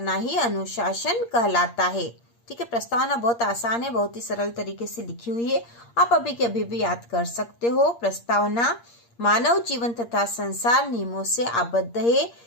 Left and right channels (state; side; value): late; right; 8.6 ms